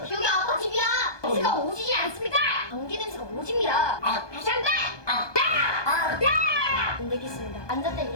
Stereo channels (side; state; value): right; late; 1.2 ms